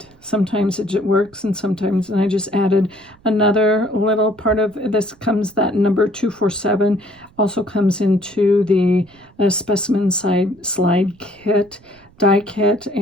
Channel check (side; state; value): right; noise; rumble, 29 dB below the sound